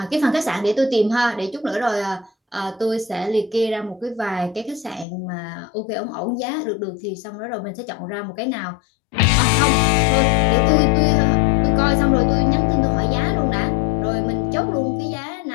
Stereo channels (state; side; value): drops out; right; at 5.1 s